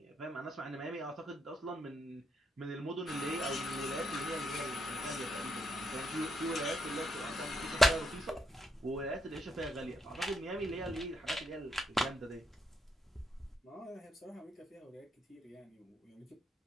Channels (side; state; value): both; normal; correlation 0.78